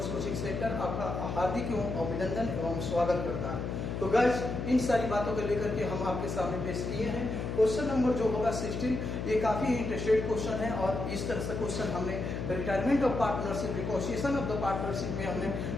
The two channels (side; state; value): left; noise; hum, 3 dB below the sound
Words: coaching centre आपका हार्दिक एवं अभिनंदन एवं स्वागत करता है। तो गाइस, इन सारी बातों को लेकर के हम आपके सामने पेश किए हैं। क्वेश्चन नंबर जो होगा 16, ये काफी इंटरेस्टेड क्वेश्चन है और इस तरह से क्वेश्चन हमने retirement of partnership, reconciliation of the partnership में हमने